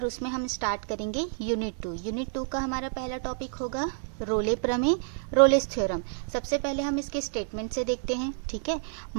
उसमें हम स्टार्ट करेंगे यूनिट टू का हमारा पहला टॉपिक होगा रोले प्रमेय, रोलेस थ्योरम। सबसे पहले हम इसके स्टेटमेंट से देखते हैं। ठीक है,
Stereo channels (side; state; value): left; silent; digital silence